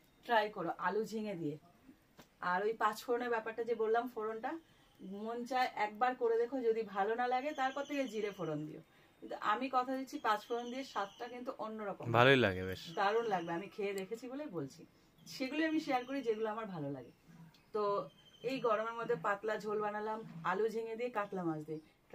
ট্রাই করো আলু ঝিঙে দিয়ে। আর ওই 5 ফোড়নের ব্যাপারটা যে বললাম, ফোড়নটা মন চায় একবার করে দেখো, যদি ভালো না লাগে তারপর থেকে জিরে ফোড়ন দিও। কিন্তু আমি কথা দিচ্ছি 5 ফোড়ন দিয়ে স্বাদটা কিন্তু অন্যরকম, ভালোই লাগে বেশ, দারুণ লাগবে। আমি খেয়ে দেখেছি বলেই বলছি, সেগুলো আমি শেয়ার করি যেগুলো আমার ভালো লাগে। তো এই গরমের মধ্যে পাতলা ঝোল বানালাম আলু ঝিঙে দিয়ে, কাতলা মাছ দিয়ে।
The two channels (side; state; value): both; identical; correlation 1.00